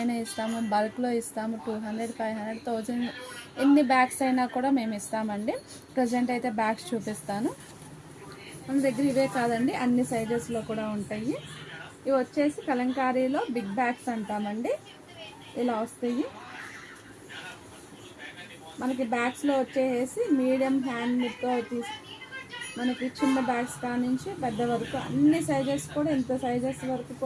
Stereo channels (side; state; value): both; identical; correlation 1.00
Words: ఇస్తాము, బల్క్లో ఇస్తాము. 200, 500, 1000 ఎన్ని బ్యాగ్స్ అయినా కూడా మేము ఇస్తామండి. ప్రజెంట్ అయితే బ్యాగ్స్ చూపిస్తాను. మన దగ్గర ఇవే కాదండి, అన్ని సైజెస్లో కూడా ఉంటాయి. ఇవి వచ్చేసి కలంకారీలో బిగ్ బ్యాగ్స్ అంటామండి. ఇలా వస్తాయి. మనకి బ్యాగ్స్లో వచ్చేసి మీడియం హ్యాండ్తో మనకి చిన్న బ్యాగ్స్ కానించి పెద్ద వరకు అన్ని సైజెస్ కూడా, ఇంత సైజెస్ వరకు